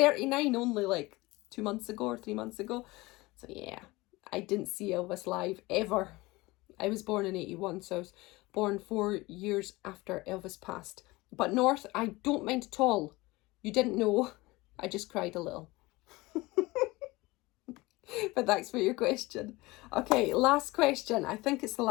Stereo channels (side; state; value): right; quieter; 21.5 dB